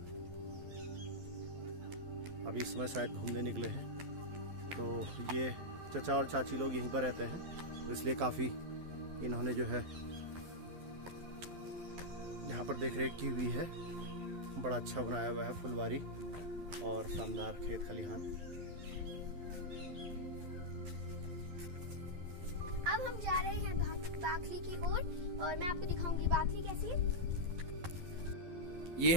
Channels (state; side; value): late; left; 11 ms